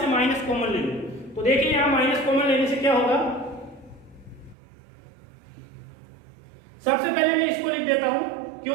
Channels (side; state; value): left; drops out; at 4.5 s